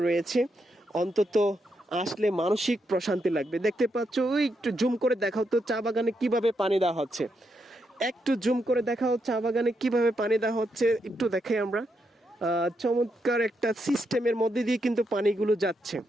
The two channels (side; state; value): both; normal; correlation 0.81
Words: রয়েছে। অন্তত আসলে মানসিক প্রশান্তি লাগবে। দেখতে পাচ্ছ, ওই একটু জুম করে দেখাও তো চা বাগানে কিভাবে পানি দেওয়া হচ্ছে, একটু জুম করে দেখাও চা বাগানে কিভাবে পানি দেওয়া হচ্ছে, একটু দেখাই আমরা। চমৎকার একটা সিস্টেমের মধ্যে দিয়ে কিন্তু পানিগুলো যাচ্ছে